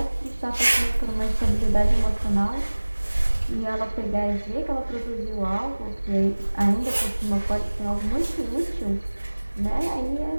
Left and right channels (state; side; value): inverted; both; correlation -1.00